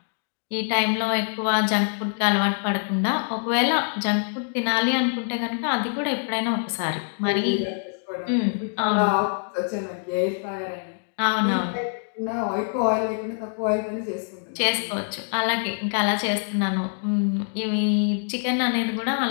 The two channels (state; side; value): silent; right; 62 dB below the other